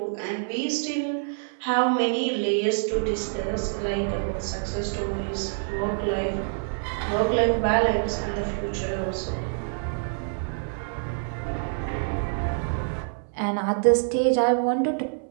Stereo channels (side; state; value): left; silent; 61 dB below the other